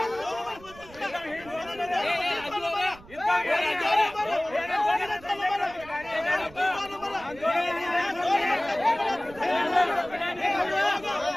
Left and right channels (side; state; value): right; noise; rumble, 20 dB below the sound